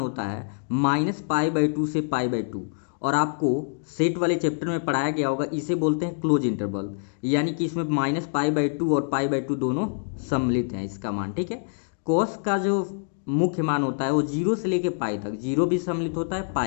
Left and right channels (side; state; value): right; silent; digital silence